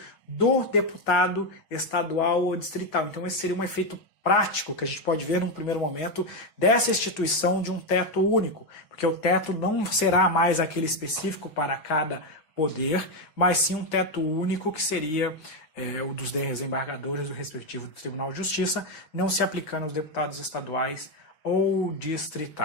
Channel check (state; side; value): late; right; 6.3 ms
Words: do deputado estadual ou distrital. Então esse seria um efeito prático que a gente pode ver num primeiro momento dessa instituição de um teto único, porque o teto não será mais aquele específico para cada poder, mas sim um teto único que seria o dos desembargadores do respectivo Tribunal de Justiça, não se aplicando aos deputados estaduais ou